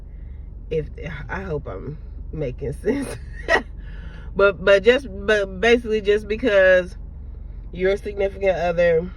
If I hope I'm making sense. but basically just because your significant other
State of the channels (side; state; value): both; identical; correlation 1.00